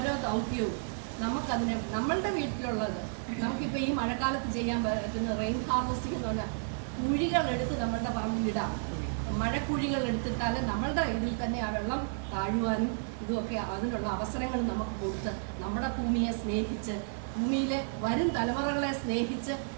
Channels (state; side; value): silent; left; digital silence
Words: ദൗത്യവും നമുക്കതിനെ നമ്മളുടെ വീട്ടിലുള്ളത്, നമുക്കിപ്പോൾ ഈ മഴക്കാലത്ത് ചെയ്യാൻ പറ്റുന്ന റെയിൻ ഹാർവെസ്റ്റിംഗ് എന്ന് പറഞ്ഞാൽ കുഴികൾ എടുത്ത് നമ്മളുടെ പറമ്പിലിടാം. മഴക്കുഴികൾ എടുത്തിട്ടാലും നമ്മളുടെ ഇതിൽ തന്നെ ആ വെള്ളം താഴുവാനും ഇതുമൊക്കെ അതിനുള്ള അവസരങ്ങൾ നമുക്ക് കൊടുത്ത് നമ്മുടെ ഭൂമിയെ സ്നേഹിച്ച്, ഭൂമിയിലെ വരും തലമുറകളെ സ്നേഹിച്ച്